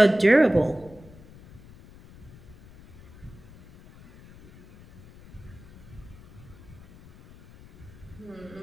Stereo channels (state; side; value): noise; left; rumble, 21 dB below the sound